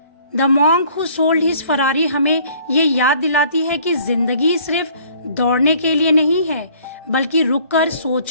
The monk who sold his Ferrari हमें ये याद दिलाती है कि जिंदगी सिर्फ दौड़ने के लिए नहीं है बल्कि रुककर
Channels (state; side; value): inverted; both; correlation -0.57